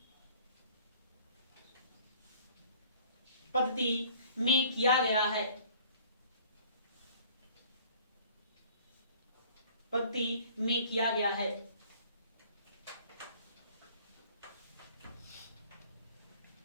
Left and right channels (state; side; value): inverted; both; correlation -0.52